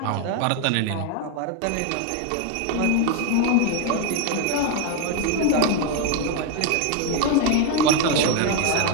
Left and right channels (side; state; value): both; different; correlation 0.01